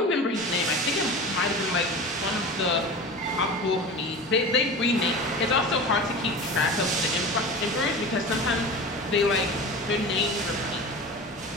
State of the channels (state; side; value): normal; both; correlation 0.32